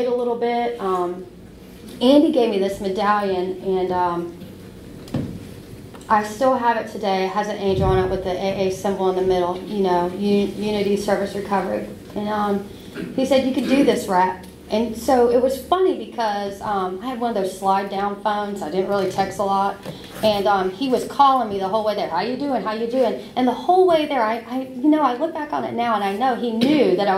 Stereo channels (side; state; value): both; identical; correlation 1.00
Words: a little bit. Andy gave me this medallion, and I still have it today. It has an angel on it with the AA symbol in the middle, you know, Unity Service Recovery. And he said, you can do this, Rat. And so it was funny because I had one of those slide-down phones. I didn't really text a lot. And he was calling me the whole way there. How you doing? How you doing? And the whole way there, I look back on it now, and I know he knew that I